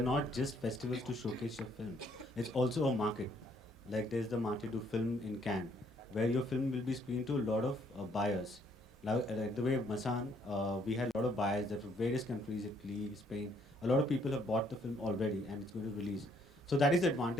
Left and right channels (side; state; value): both; normal; correlation 0.67